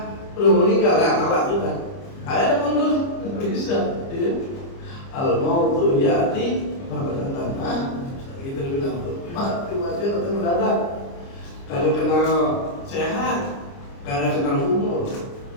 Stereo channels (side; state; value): right; late; 29 ms